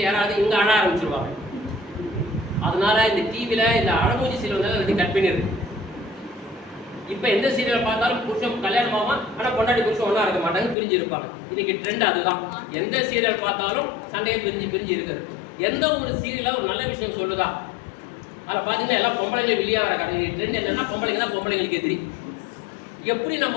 யாராவது இங்கே அழ ஆரம்பிச்சிருவாங்க. அதனால இந்த டிவியில் இந்த அழமூஞ்சி சீரியல் வந்தாலும் அது கட் பண்ணிடுது. இப்போ எந்த சீரியலை பார்த்தாலும் புருஷன் கல்யாணம் ஆகும், ஆனால் பொண்டாட்டி புருஷன் ஒன்றா இருக்க மாட்டாங்க, பிரிஞ்சு இருப்பாங்க. இன்னைக்கு ட்ரெண்ட் அதுதான். எந்த சீரியல் பார்த்தாலும் சண்டையை பிரிஞ்சு இருக்குது. எந்த ஒரு சீரியலாக ஒரு நல்ல விஷயம் சொல்லுதா, அதில் பார்த்தீங்கன்னா எல்லாம் பொம்பளைங்க வெளியே வர கடை. ட்ரெண்ட் என்னன்னா பொம்பளைங்க தான் பொம்பளைங்களுக்கு எதிரி. எப்படி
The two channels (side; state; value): right; drops out; at 10.8 s